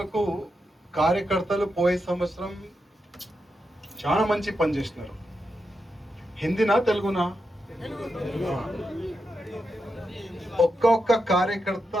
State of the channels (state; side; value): normal; both; correlation 0.86